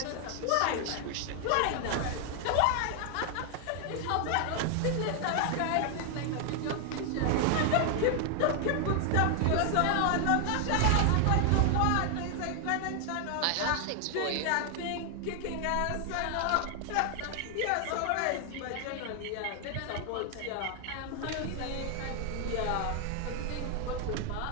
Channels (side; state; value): both; different; correlation 0.00